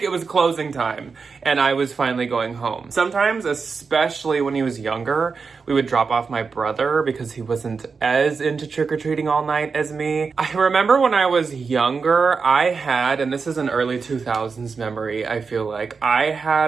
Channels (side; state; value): left; quieter; 5.0 dB